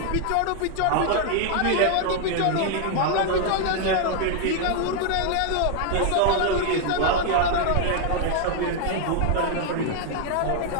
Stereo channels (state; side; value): different; both; correlation 0.00